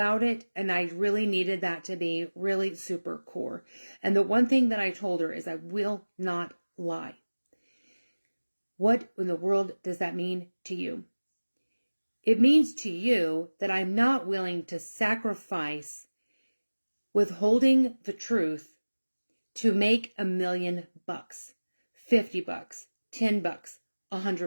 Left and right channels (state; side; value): inverted; both; correlation -1.00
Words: it. And I really needed that to be really super core. And the one thing that I told her is I will not lie. What in the world does that mean to you? It means to you that I'm not willing to sacrifice withholding the truth to make $1 million, $50, $10,